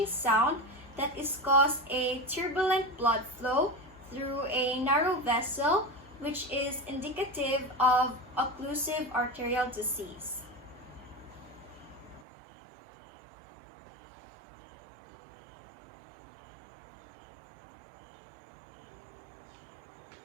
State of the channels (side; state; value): left; drops out; at 12.2 s